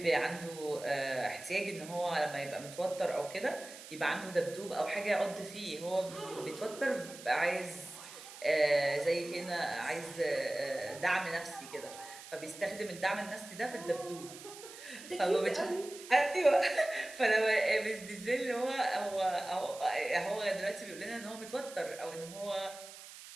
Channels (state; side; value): noise; right; hiss, 15 dB below the sound